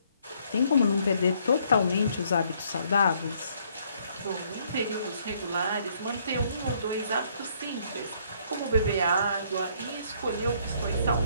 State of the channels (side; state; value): both; inverted; correlation -0.66